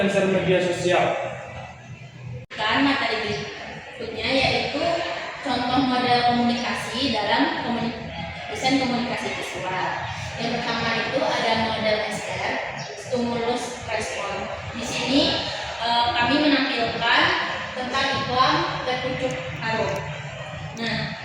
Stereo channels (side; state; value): both; identical; correlation 1.00